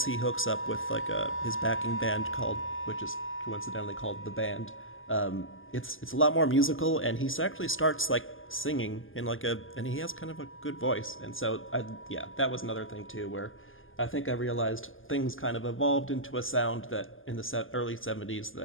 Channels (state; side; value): late; right; 0.58 ms